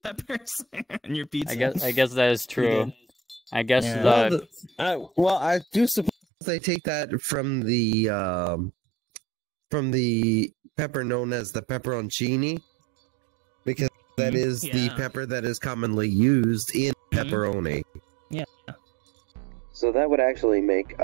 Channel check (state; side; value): drops out; left; at 6.1 s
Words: peppers in your pizza. I guess that is true. I guess well, I do suppose they take that from the pepper known as the pepperoncini, because that is the pepper that is commonly used in pepperoni. Yeah. So that would actually make